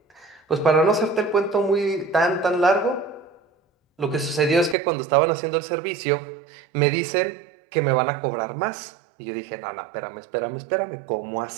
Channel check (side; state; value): left; drops out; at 4.8 s